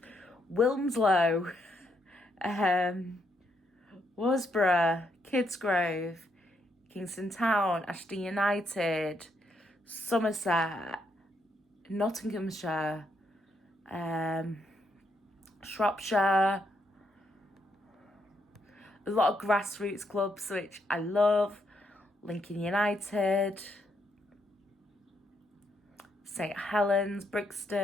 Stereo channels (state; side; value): normal; both; correlation 0.77